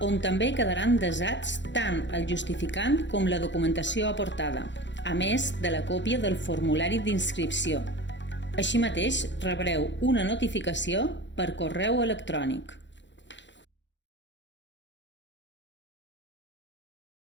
on també quedaran desats tant el justificant com la documentació aportada, a més de la còpia del formulari d'inscripció. Així mateix, rebreu una notificació per correu electrònic.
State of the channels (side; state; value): right; late; 0.53 ms